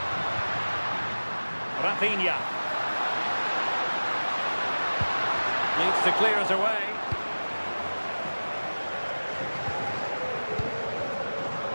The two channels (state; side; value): inverted; both; correlation -1.00